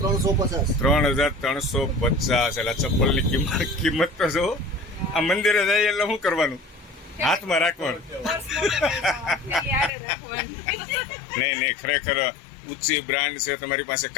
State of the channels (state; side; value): drops out; right; at 9.9 s